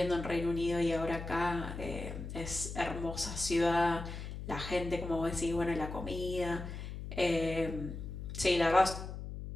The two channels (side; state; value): left; noise; hum, 8 dB below the sound